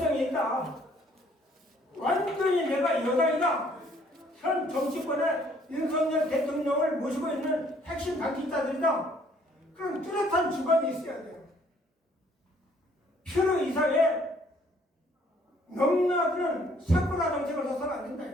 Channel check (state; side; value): normal; both; correlation 0.62